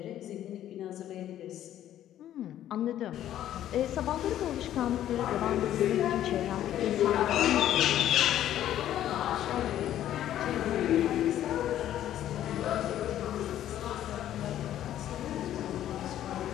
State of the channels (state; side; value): quieter; right; 11.9 dB